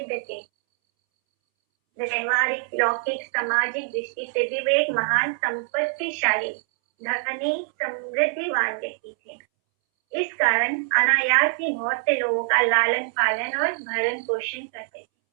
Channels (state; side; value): silent; left; 62 dB below the other